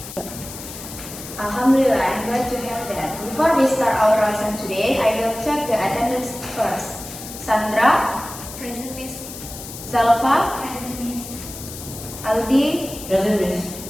Alhamdulillah, I'm glad to hear that. Before we start our lesson today, I will check the attendance first. Sandra, Present, Miss. Zalfa, Present, Miss. Aldi, Present, Miss.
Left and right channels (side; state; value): left; noise; hiss, 12 dB below the sound